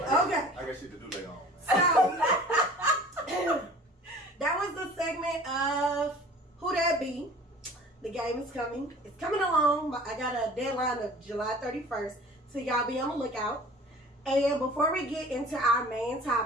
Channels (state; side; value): normal; both; correlation 0.45